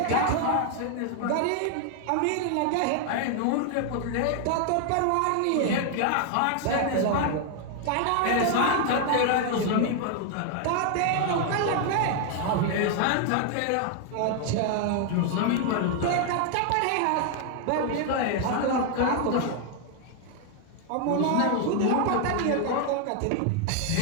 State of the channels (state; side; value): different; both; correlation 0.00